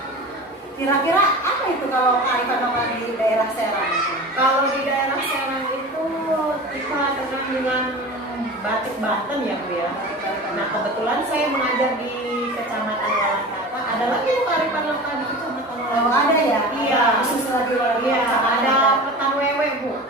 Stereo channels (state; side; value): normal; both; correlation 0.34